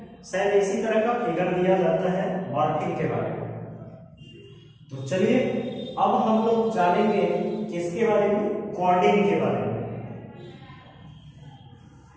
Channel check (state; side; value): identical; both; correlation 1.00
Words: शायद इसी तरह का फिगर दिया जाता है मॉर्फिन के बारे में। तो चलिए अब हम लोग जानेंगे किसके बारे में, कॉर्डिन के बारे में।